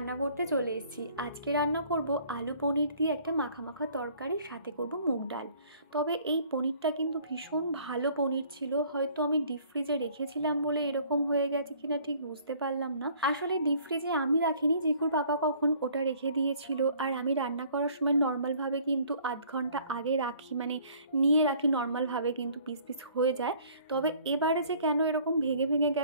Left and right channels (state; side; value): inverted; both; correlation -0.56